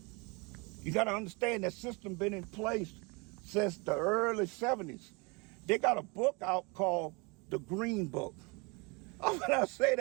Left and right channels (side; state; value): left; quieter; 29.0 dB